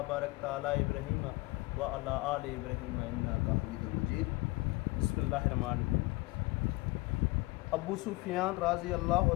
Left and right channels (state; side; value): quieter; right; 22.7 dB